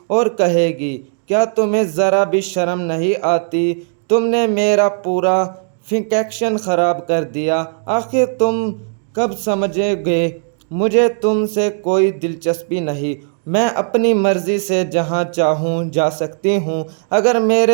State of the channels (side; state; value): left; silent; digital silence